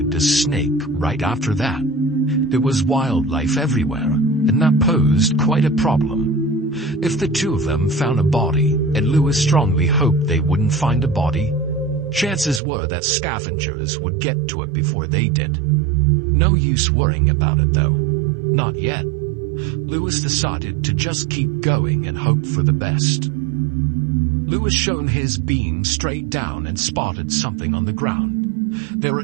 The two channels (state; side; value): drops out; left; at 12.6 s